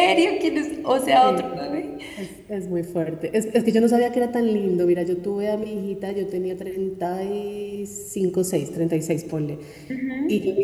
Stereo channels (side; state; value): both; identical; correlation 1.00